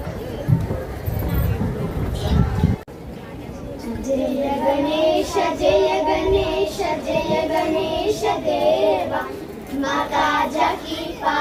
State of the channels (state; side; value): identical; both; correlation 1.00